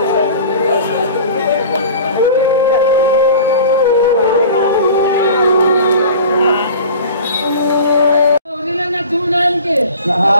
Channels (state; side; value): inverted; both; correlation -0.41